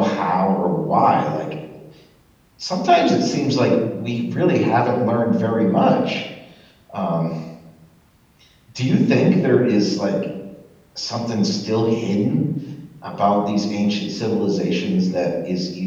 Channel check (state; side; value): identical; both; correlation 1.00